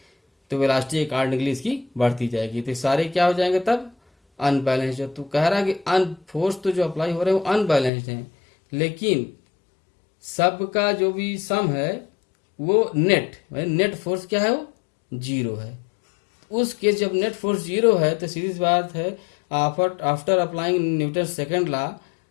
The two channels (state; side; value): drops out; right; at 7.9 s